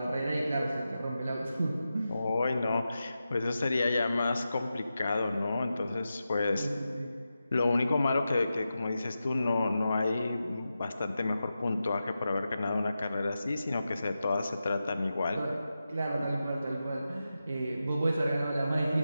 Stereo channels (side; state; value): both; inverted; correlation -0.91